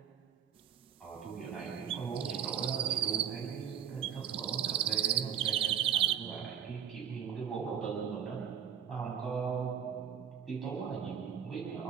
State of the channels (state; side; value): quieter; left; 8.4 dB